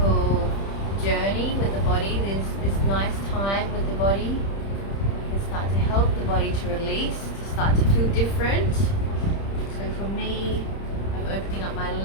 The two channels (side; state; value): right; late; 30 ms